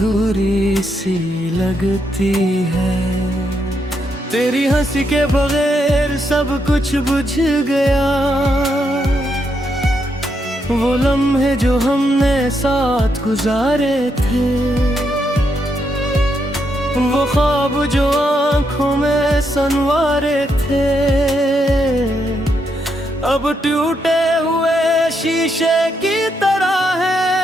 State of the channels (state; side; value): normal; both; correlation 0.79